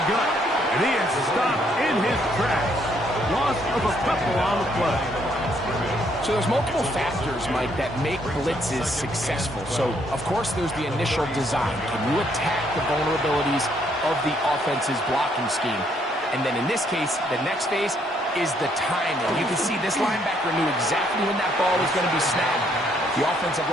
gut. And he is stopped in his tracks. Loss of a couple on the play. So there's multiple factors, Mike, that make blitzes successful. So, of course, there's the initial design. Can you attack the vulnerabilities of the offense's blocking scheme? And then in this case, the next phase is the timing. You can see this linebacker knew exactly when that ball was going to be snapped. The offensive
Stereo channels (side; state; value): both; normal; correlation 0.70